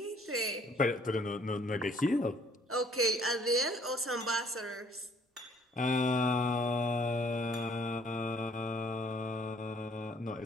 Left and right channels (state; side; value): normal; both; correlation 0.60